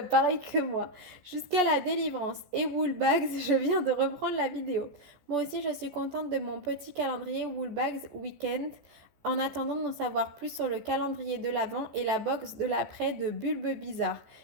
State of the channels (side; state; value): left; late; 14 ms